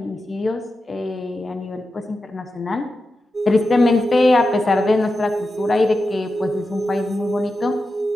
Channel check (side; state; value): both; normal; correlation 0.90